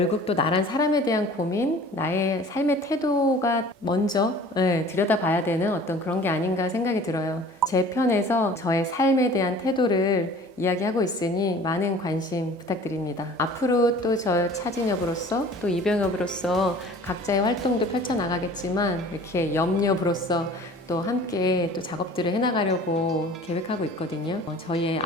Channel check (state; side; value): normal; both; correlation 0.46